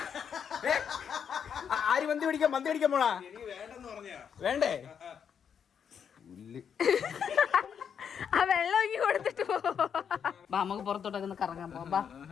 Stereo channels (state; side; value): quieter; right; 7.6 dB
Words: ആര് മന്തി പിടിക്കാൻ? മന്തി പിടിക്കാൻ പോണാ? വേണ്ടേ? ആ വെള്ളം ഒങ്ങി കൊടുത്തിട്ട് പോ. ബാ നമുക്ക് പുറത്തോട്ടൊക്കെ ഒന്ന് കറങ്ങാൻ പോവാം.